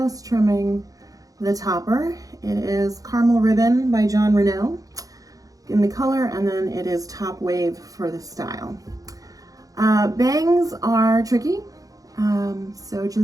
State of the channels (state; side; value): late; left; 0.17 ms